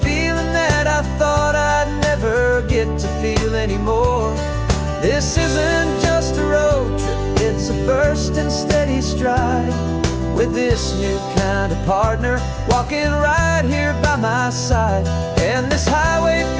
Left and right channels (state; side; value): identical; both; correlation 1.00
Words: feeling that I thought I'd never get to feel anymore. This isn't just a road trip, it's a first and steady stride, with this new kind of partner walking right here by my side. And this highway